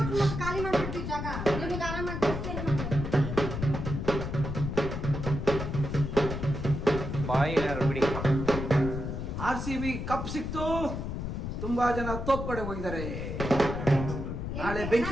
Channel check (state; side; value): noise; left; rumble, 4 dB below the sound